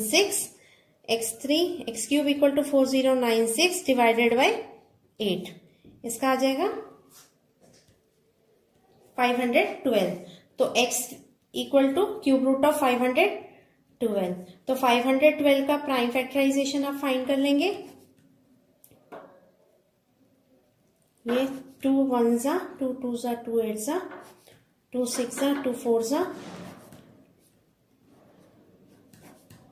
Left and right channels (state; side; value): identical; both; correlation 1.00